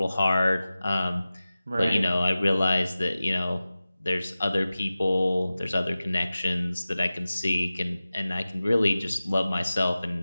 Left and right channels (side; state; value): both; inverted; correlation -0.96